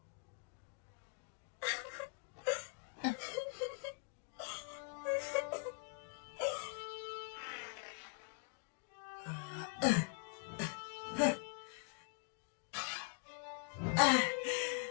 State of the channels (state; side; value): quieter; right; 37.0 dB